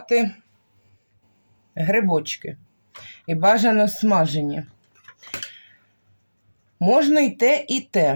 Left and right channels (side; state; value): both; inverted; correlation -1.00